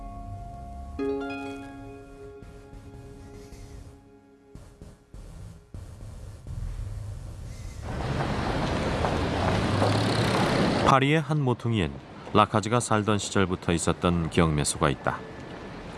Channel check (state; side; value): identical; both; correlation 1.00